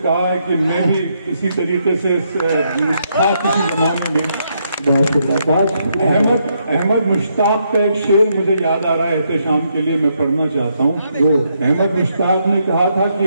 है कि मैं भी इसी तरीके से किसी जमाने में। अहमद मुश्ताक का एक शेर मुझे याद आ रहा है, एहतशाम के लिए मैं पढ़ना चाहता हूँ। अहमद मुश्ताक ने कहा था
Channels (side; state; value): both; inverted; correlation -0.77